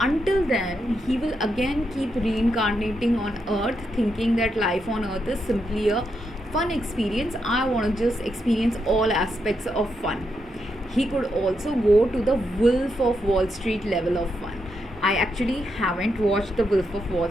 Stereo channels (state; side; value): normal; both; correlation 0.82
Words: then he will again keep reincarnating on earth, thinking that life on earth is simply a fun experience. I want to just experience all aspects of fun. He could also go to the Wolf of Wall Street level of fun. I actually haven't watched the Wolf of